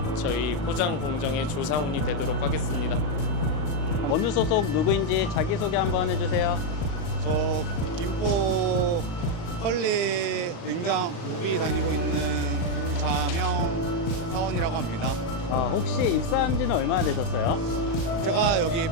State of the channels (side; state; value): right; late; 37 ms